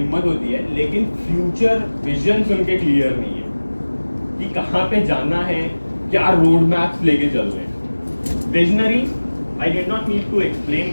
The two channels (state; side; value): inverted; both; correlation -1.00